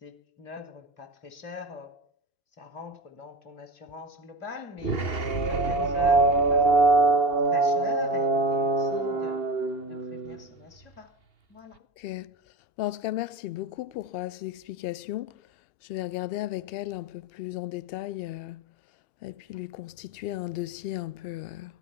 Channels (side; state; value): right; late; 2.8 ms